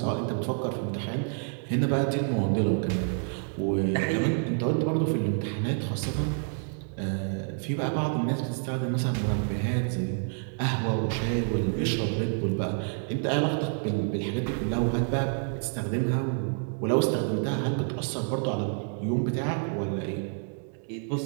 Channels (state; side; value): silent; left; 56 dB below the other